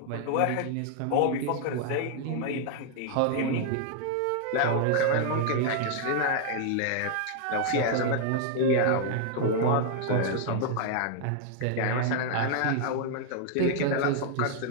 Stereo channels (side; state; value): both; different; correlation 0.00